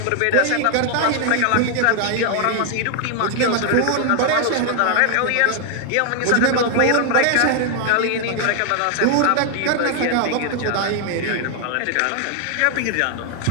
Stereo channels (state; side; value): different; both; correlation 0.00